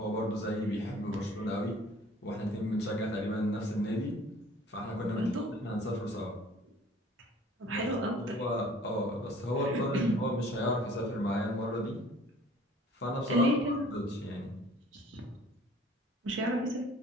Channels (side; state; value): both; normal; correlation 0.51